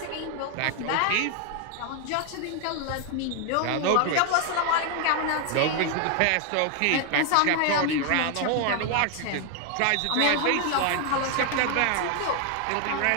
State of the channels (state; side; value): different; both; correlation 0.00